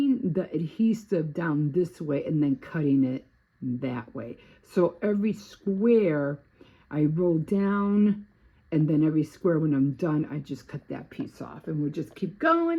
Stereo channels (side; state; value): both; identical; correlation 1.00